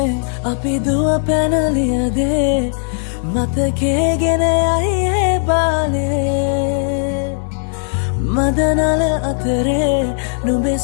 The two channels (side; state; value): right; silent; 66 dB below the other